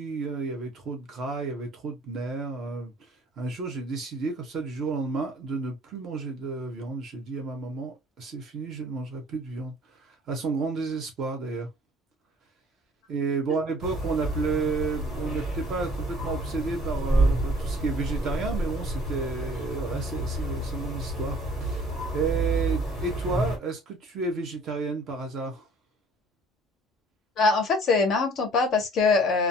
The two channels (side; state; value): both; normal; correlation 0.54